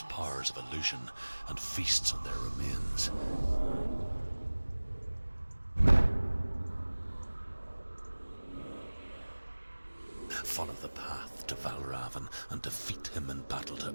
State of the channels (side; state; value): both; inverted; correlation -1.00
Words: powers of illusion and feasts on their remains. Follow the path to Valravn and defeat him in battle to